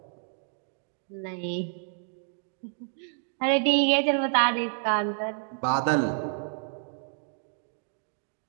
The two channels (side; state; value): left; silent; 58 dB below the other